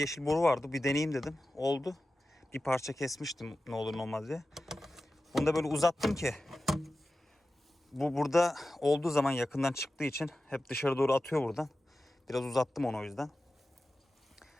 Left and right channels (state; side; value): normal; both; correlation 0.94